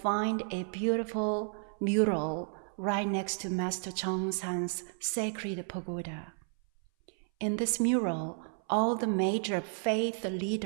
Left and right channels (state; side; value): silent; left; 56 dB below the other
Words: a beautiful mural right next to Master Chongsan's sacred pagoda. In this mural, all the major faith